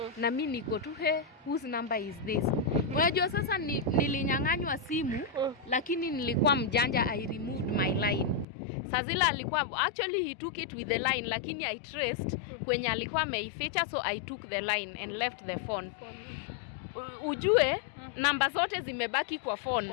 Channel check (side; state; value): right; drops out; at 8.5 s